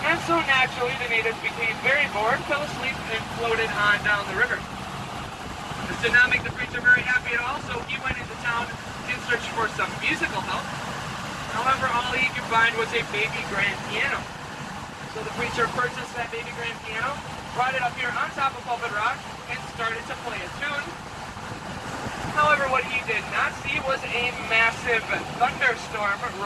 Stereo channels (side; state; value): both; identical; correlation 1.00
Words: and so naturally the natives became very bored, fell asleep, and floated on down the river. This did not make the preacher very happy at all, so he went into town in search for some musical help. However, all he could find was a baby grand piano. So the preacher purchased that baby grand piano, brought it up here on top of pulpit rock, and started to play a tune. However, what he did not see was a massive thunderstorm